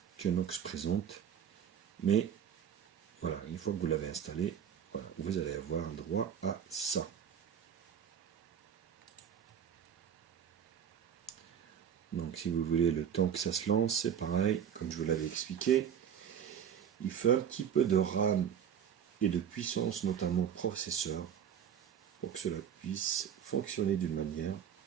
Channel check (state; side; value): quieter; left; 8.6 dB